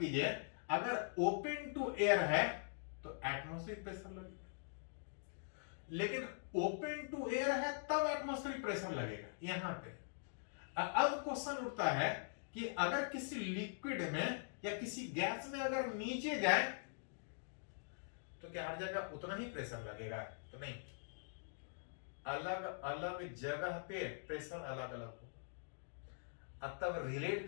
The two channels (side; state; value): right; silent; digital silence